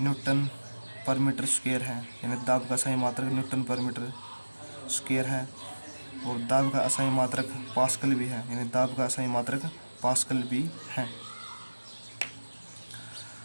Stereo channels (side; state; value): both; inverted; correlation -1.00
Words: पर मीटर स्क्वायर है। यानी दाब का असाई मात्रक न्यूटन पर मीटर स्क्वायर है। और दाब का असाई मात्रक पास्कल भी है। यानी दाब का असाई मात्रक पास्कल भी है।